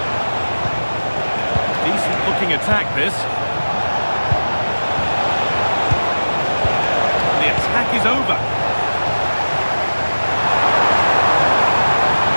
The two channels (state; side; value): inverted; both; correlation -1.00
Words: Decent looking attack, this. The attack is over.